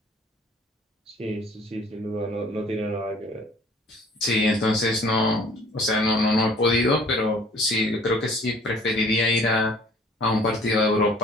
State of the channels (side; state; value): both; normal; correlation 0.54